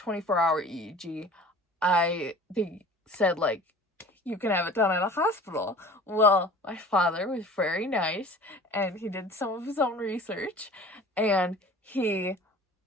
EEG. They said, like, you can have it done at a hospital. Well, my father was very nice, and he did some of his own research, and he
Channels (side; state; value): both; normal; correlation 0.44